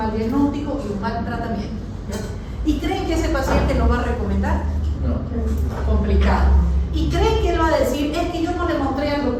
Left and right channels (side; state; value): both; identical; correlation 1.00